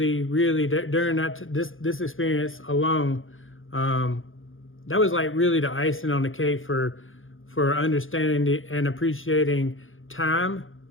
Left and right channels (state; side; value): late; right; 0.59 ms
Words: during this experience alone, that was like really the icing on the cake for understanding and appreciating time